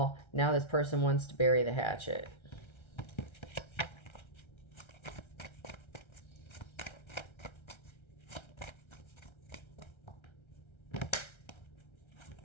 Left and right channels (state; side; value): late; right; 1.3 ms